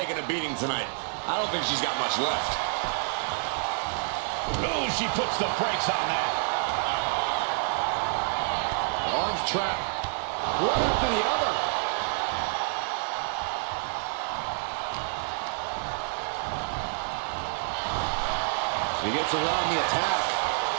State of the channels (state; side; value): silent; left; 56 dB below the other